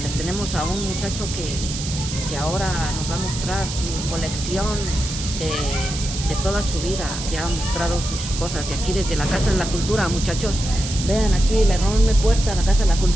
tenemos a un muchacho que ahora nos va a mostrar su colección de toda su vida, que ha mostrado sus cosas. Y aquí desde la Casa de la Cultura, muchachos, vean aquí la enorme puerta de la Casa de la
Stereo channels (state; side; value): noise; right; hiss, 7 dB below the sound